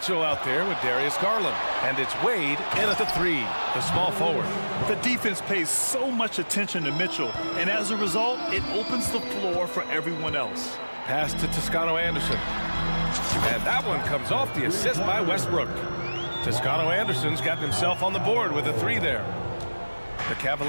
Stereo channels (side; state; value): both; inverted; correlation -1.00